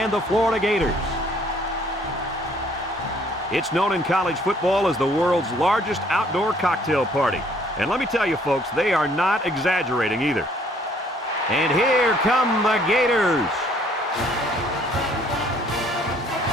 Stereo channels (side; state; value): both; normal; correlation 0.61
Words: the Florida Gators. It's known in college football as the world's largest outdoor cocktail party. And let me tell you, folks, they are not exaggerating either. And here come the Gators.